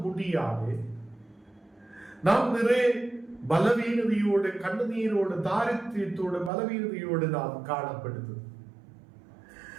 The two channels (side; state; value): left; drops out; at 6.5 s